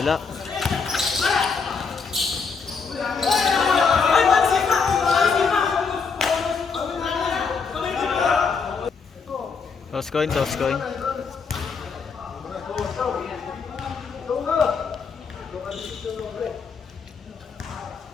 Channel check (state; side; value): quieter; right; 5.3 dB